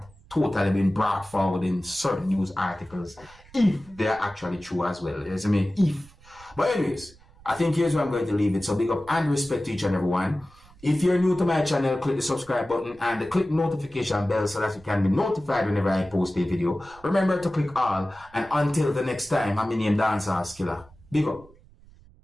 totally been brought forward in certain news articles, if they're actually true as well. Yes, I mean, if. But anyways, I think here's where I'm going to leave it. So big up and respect to each and everyone. If you're new to my channel, click the subscribe button and click notification bell so that you can be notified whenever I post a video. Remember to click all. And until the next time, I'm named Dancehall Skilla. Big up.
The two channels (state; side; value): noise; right; rumble, 25 dB below the sound